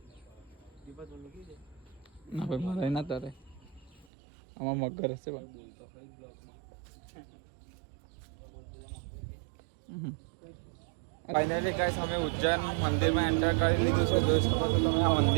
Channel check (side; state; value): left; drops out; at 4.0 s